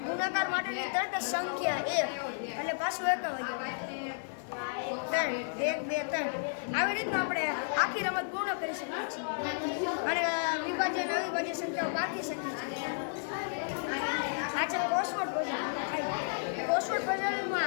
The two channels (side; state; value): right; silent; digital silence